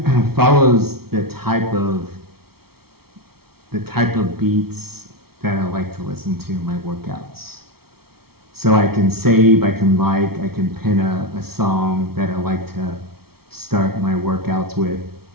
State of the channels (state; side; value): late; left; 0.95 ms